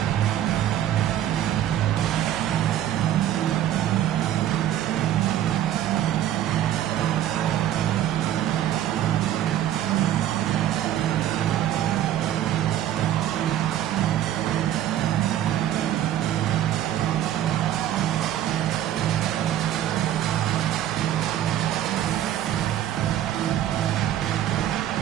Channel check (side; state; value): left; quieter; 11.7 dB